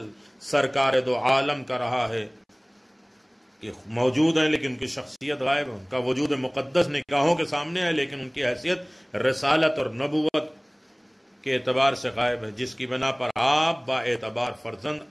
سرکار دو عالم کا رہا ہے کہ موجود ہیں لیکن ان کی شخصیت غائب ہے. ان کا وجود مقدس نگاہوں کے سامنے ہے لیکن ان کی حیثیت رسالت اور نبوت کے اعتبار سے غائب ہے، جس کی بنا پر آپ با اعتبار فرزند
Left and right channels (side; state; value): both; identical; correlation 1.00